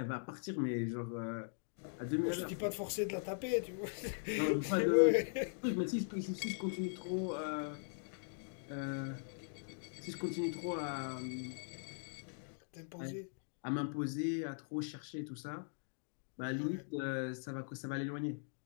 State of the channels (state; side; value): silent; right; digital silence